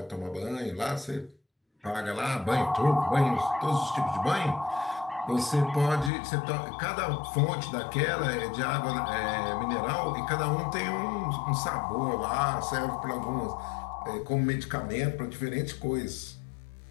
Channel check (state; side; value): drops out; right; at 6.1 s